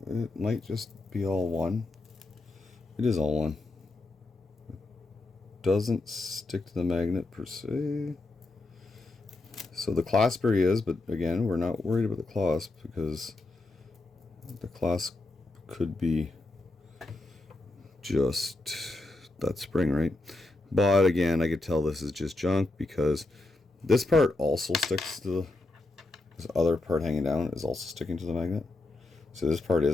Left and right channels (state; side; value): quieter; right; 3.0 dB